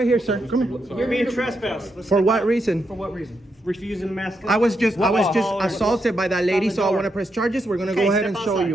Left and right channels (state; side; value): normal; both; correlation 0.82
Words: here, sir. Come here. You're being trespassed. Let's For step what out. reason? For what reason? Refusing to mask up. I was just Oh, assaulted by that lady, It's on the so I door. want to press charges. We're gonna Okay, go ahead step and show outside.